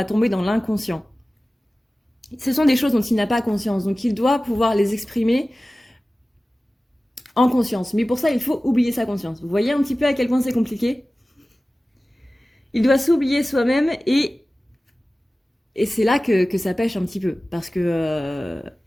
tomber dans l'inconscient. Ce sont des choses dont il n'a pas conscience, donc il doit pouvoir les exprimer en conscience. Mais pour ça, il faut oublier sa conscience. Vous voyez un petit peu à quel point c'est compliqué? Il doit s'oublier soi-même et c'est là que ça pêche un petit peu, parce que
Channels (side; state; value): both; normal; correlation 0.97